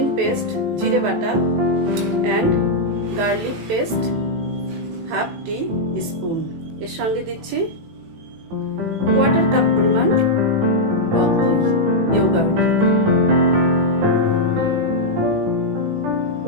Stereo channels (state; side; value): late; left; 18 ms